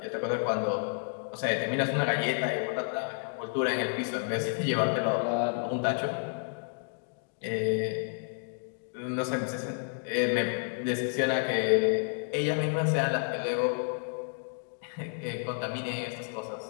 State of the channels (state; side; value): silent; right; 57 dB below the other